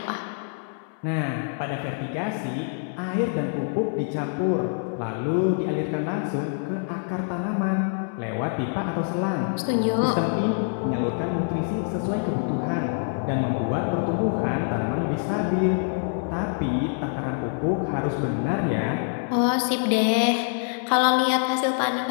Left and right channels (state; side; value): silent; right; 61 dB below the other